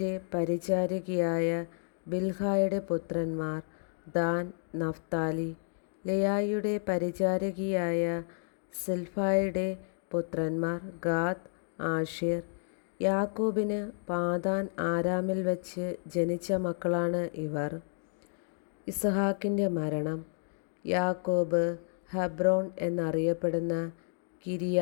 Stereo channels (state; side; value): silent; right; digital silence